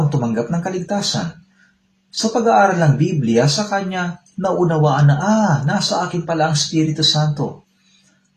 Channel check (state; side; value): identical; both; correlation 1.00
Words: tumanggap ng kaligtasan. Sa pag-aaral ng Biblia, sa kanya naunawaan na nasa akin pala ang Espiritu Santo.